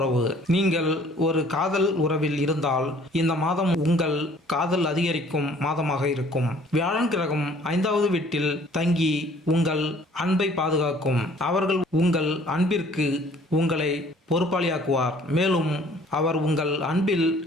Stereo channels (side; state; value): both; normal; correlation 0.55